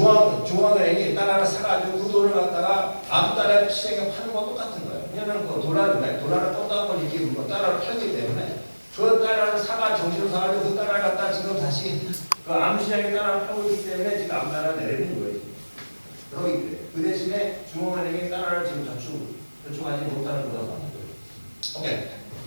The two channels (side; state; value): both; inverted; correlation -1.00